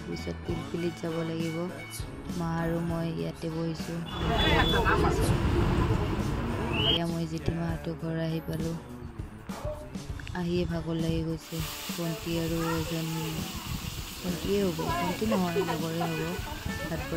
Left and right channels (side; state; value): both; identical; correlation 1.00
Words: পিছত পিলপিলিত যাব লাগিব মা আৰু মই ইয়াতে বহিছোঁ এতিয়া মই জেঠীমাহঁতৰ ঘৰ আহি পালোঁ আহিয়ে ভাগৰ লাগি গৈছে ভণ্টি আৰু এজন ভণ্টিয়ে হ'ব ভণ্টি নহয় লগৰে হ'ব ভাত